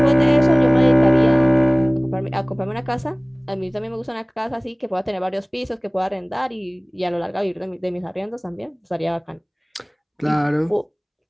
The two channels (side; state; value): both; identical; correlation 1.00